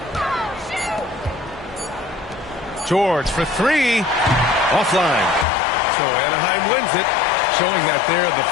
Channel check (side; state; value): right; drops out; at 5.5 s